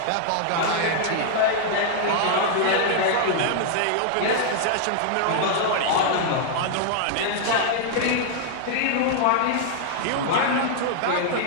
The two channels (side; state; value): both; different; correlation -0.01